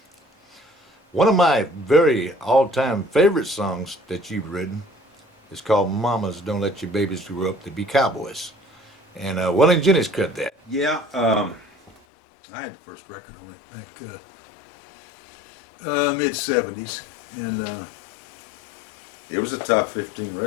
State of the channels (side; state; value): right; drops out; at 12.0 s